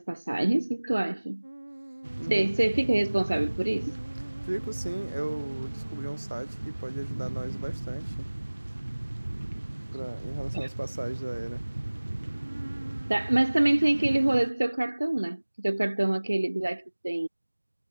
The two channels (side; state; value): both; inverted; correlation -1.00